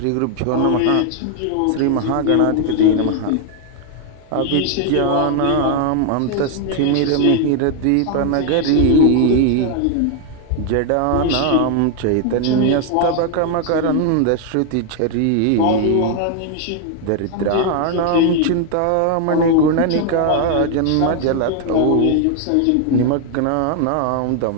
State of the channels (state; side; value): different; both; correlation 0.00